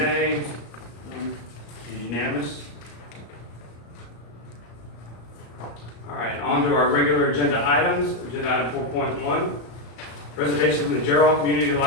Unanimous. All right, on to our regular agenda items. Agenda item 4.1, presentation from the Gerald Community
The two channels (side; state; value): right; late; 34 ms